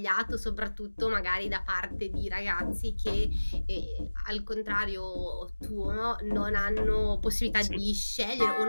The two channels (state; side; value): inverted; both; correlation -1.00